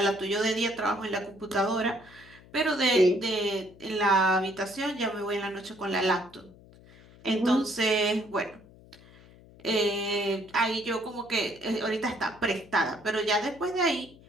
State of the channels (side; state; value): left; noise; hum, 23 dB below the sound